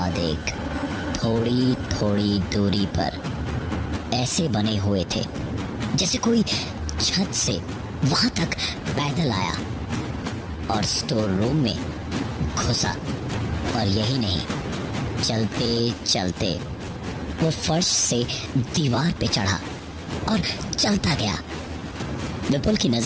एक थोड़ी थोड़ी दूरी पर ऐसे बने हुए थे जैसे कोई छत से वहां तक पैदल आया और स्टोर रूम में घुसा। और यही नहीं, चलते चलते वो फर्श से दीवार पे चढ़ा और चलता गया। विपुल की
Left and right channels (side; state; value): both; identical; correlation 1.00